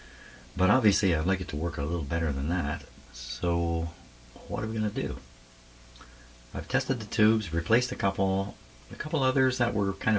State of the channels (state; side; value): identical; both; correlation 1.00